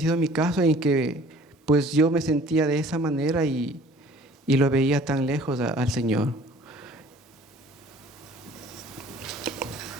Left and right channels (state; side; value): normal; both; correlation 0.51